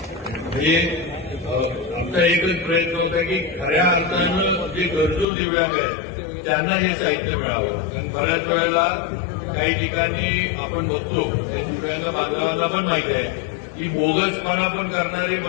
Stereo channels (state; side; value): drops out; right; at 5.2 s